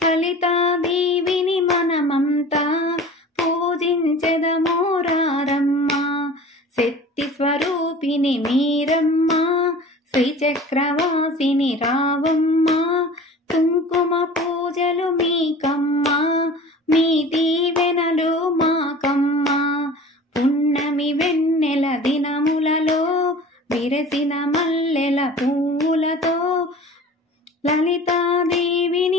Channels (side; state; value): both; normal; correlation 0.41